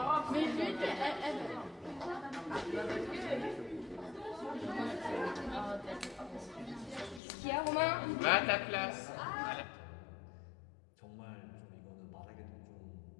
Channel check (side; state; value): right; drops out; at 7.2 s